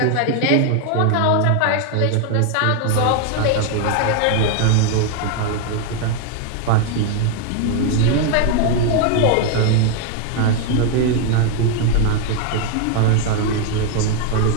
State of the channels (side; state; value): both; different; correlation 0.00